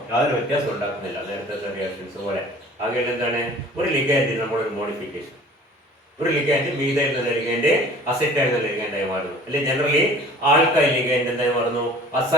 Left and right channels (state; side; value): normal; both; correlation 0.47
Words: യാതൊരു വ്യത്യാസം ഉണ്ടാക്കുന്നില്ല നേരത്തെ റിയാക്ഷൻസ് പോലെ. ആകെ എന്താണ് ഒരു ലിഗാൻഡ് നമ്മളൊരു മോഡിഫിക്കേഷൻ, ഒരു ലിഗാൻഡ് മീഥൈൽ എന്നുള്ള ലിഗാൻഡ് അസെറ്റൈൽ എന്നുള്ള ലിഗാൻഡായി മാറുന്നു, അല്ലെങ്കിൽ ജനറലി ആൽക്കൈൽ ലിഗാൻഡ് എന്തായി മാറുന്നു?